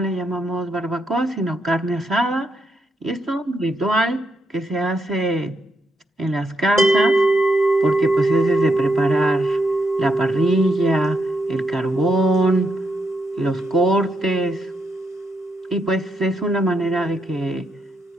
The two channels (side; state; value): both; normal; correlation 0.80